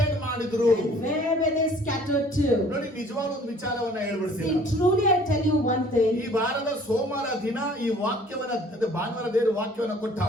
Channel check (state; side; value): normal; both; correlation 0.54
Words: ಮಾಡಿದ್ರು. And where were they scattered to? ನೋಡಿ, ನಿಜವಾದ ಒಂದು ವಿಚಾರವನ್ನ ಹೇಳ್ಬಿಡ್ತೀನಿ. See, truly I tell you one thing. ಈ ವಾರದ ಸೋಮವಾರ ದಿನ ಈ ವಾಕ್ಯವನ್ನ, ಅಂದ್ರೆ ಭಾನುವಾರ ದೇವರು ವಾಕ್ಯವನ್ನ